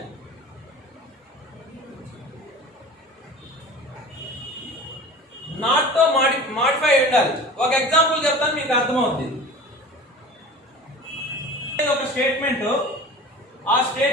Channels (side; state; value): both; normal; correlation 0.38